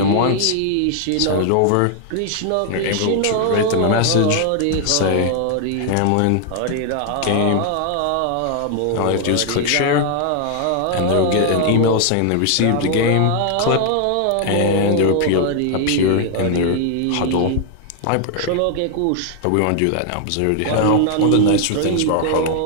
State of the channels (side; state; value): both; different; correlation 0.00